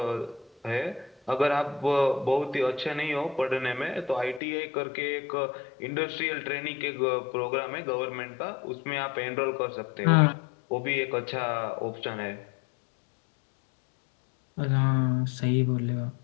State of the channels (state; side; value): drops out; right; at 4.4 s